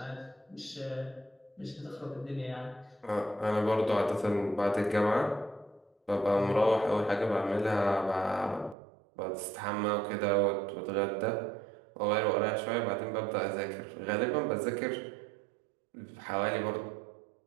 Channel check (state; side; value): drops out; left; at 8.8 s